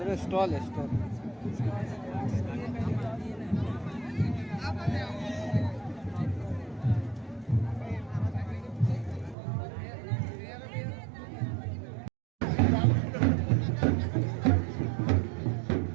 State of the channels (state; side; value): drops out; left; at 9.3 s